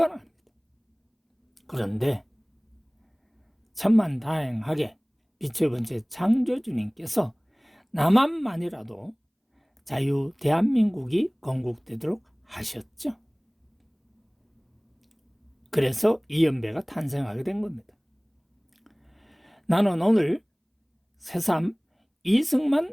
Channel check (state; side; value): identical; both; correlation 1.00